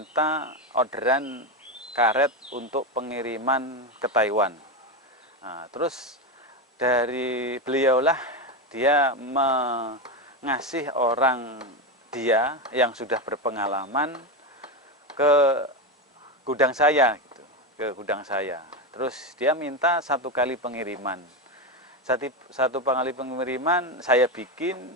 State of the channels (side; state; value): both; normal; correlation 0.13